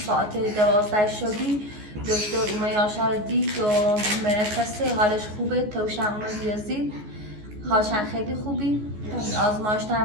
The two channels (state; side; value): late; left; 14 ms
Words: 12 شبی دکتر اومه یاشار دید و مرخصه حالش خوبه توشن اومه بیازید حالشان خیلی خوبی